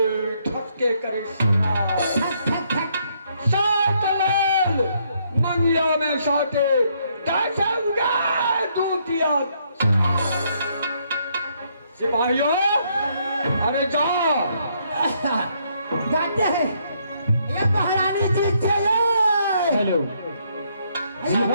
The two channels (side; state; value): both; inverted; correlation -0.71